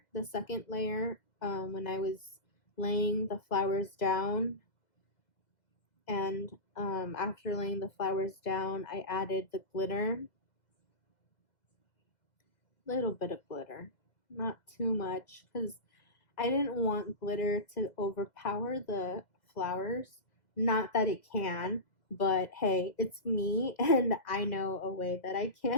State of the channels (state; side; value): late; right; 2.0 ms